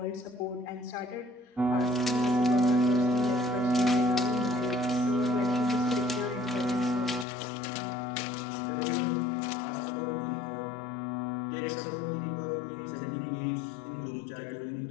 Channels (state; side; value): drops out; right; at 7.2 s